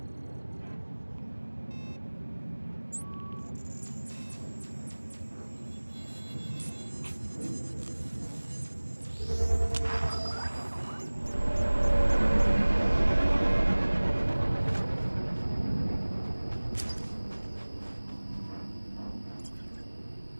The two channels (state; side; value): inverted; both; correlation -1.00